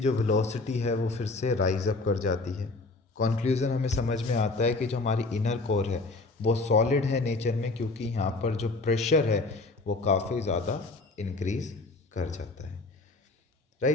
वेलोसिटी है वो फिर से राइज अप कर जाती है। कंक्लूजन हमें समझ में आता है कि जो हमारी इनर कोर है वो सॉलिड है नेचर में, क्योंकि यहाँ पर जो प्रेशर है वो काफ़ी ज़्यादा इंक्रीज कर जाता है।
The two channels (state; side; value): quieter; right; 3.4 dB